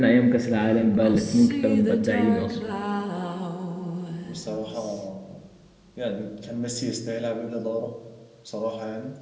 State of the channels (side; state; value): both; identical; correlation 1.00